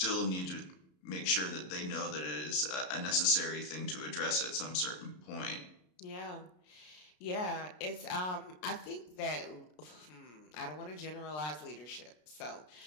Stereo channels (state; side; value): late; right; 33 ms